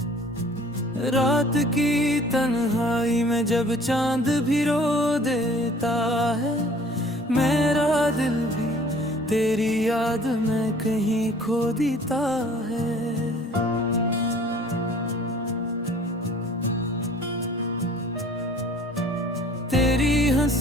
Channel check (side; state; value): both; normal; correlation 0.52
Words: रात की तन्हाई में जब चांद भी रो देता है, मेरा दिल भी तेरी याद में कहीं खो देता है। तेरी